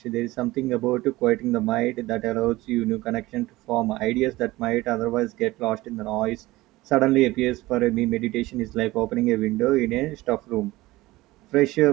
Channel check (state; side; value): quieter; left; 18.8 dB